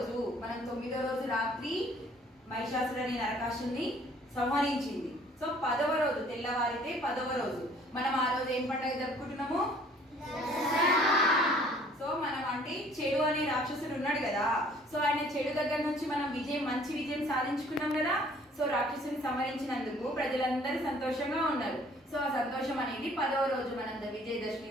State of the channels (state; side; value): normal; both; correlation 0.56